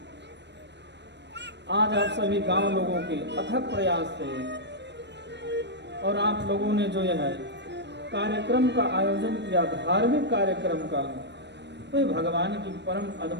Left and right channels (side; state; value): left; late; 0.50 ms